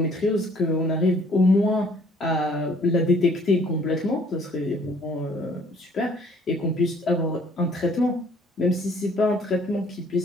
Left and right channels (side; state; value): both; normal; correlation 0.59